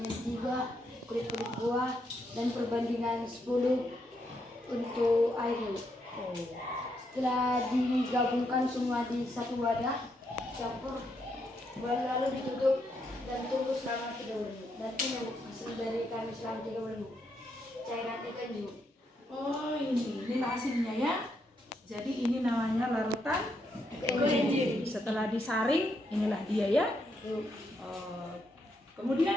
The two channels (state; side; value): normal; both; correlation 0.78